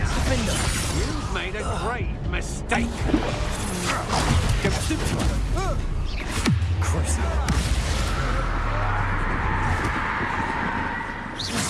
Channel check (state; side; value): identical; both; correlation 1.00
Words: Defendo! You've made a grave mistake. Go Stupefy! Crucio!